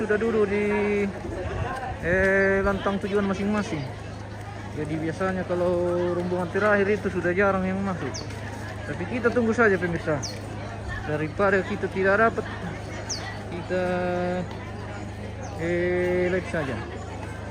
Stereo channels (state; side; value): identical; both; correlation 1.00